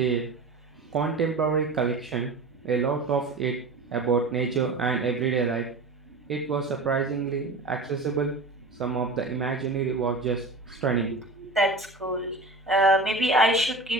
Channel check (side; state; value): left; quieter; 3.2 dB